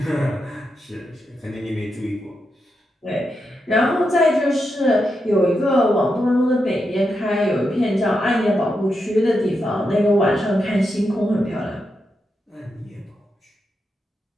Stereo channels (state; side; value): normal; both; correlation 0.85